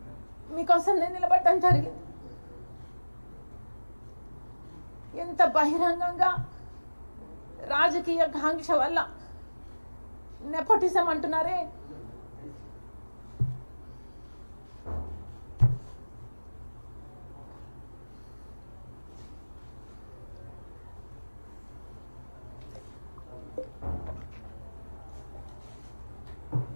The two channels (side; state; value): both; inverted; correlation -1.00